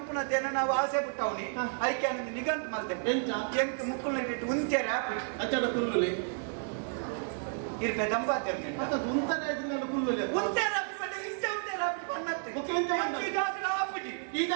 ನಾವು ಆಸೆ ಬಿಟ್ಟವನಿ ಅದಕ್ಕೆ ನನಗೆ ನಿಗಂತ ಮಾಡ್ತೇನೆ ಎಂಕ ಮುಕ್ಕುಲ್ನ ಇಟ್ಟು ಉಂತ್ಯಾರ ಅಚ್ಚಡ ಕುಲ್ಲುಲಿ ಇರ್ಪೆ ದಂಪಾತೇನೆ ಮತ್ತೆ ಉಂತನೆ ಇದನ್ನ ಕುಲ್ಲುಲಿ ಉಂತ್ಯಾರ ಬಡ್ಡೆ ಇಷ್ಟ ಉಂತ್ಯಾರ ಪನ್ನತ್ತೆ ಓಕೆ ಎಂತ ಆಪುಜಿ ಈ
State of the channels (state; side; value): silent; left; 57 dB below the other